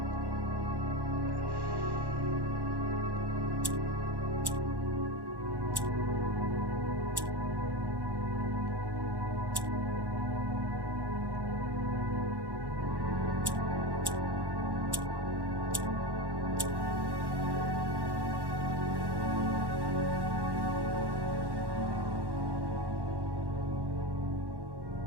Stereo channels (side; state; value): left; late; 1.1 ms